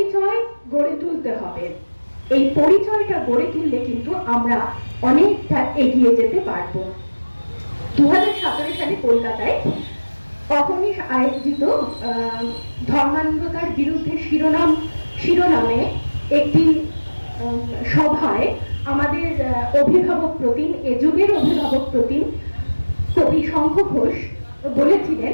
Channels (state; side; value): inverted; both; correlation -1.00